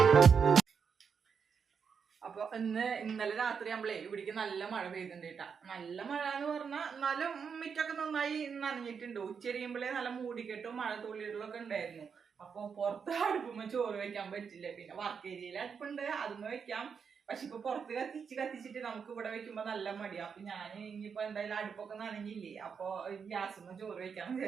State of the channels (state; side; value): quieter; left; 6.4 dB